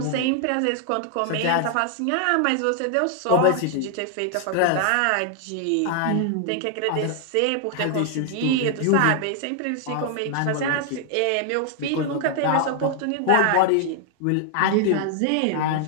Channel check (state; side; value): different; both; correlation 0.00